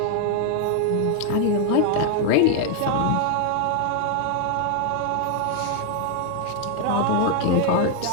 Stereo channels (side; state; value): both; different; correlation 0.00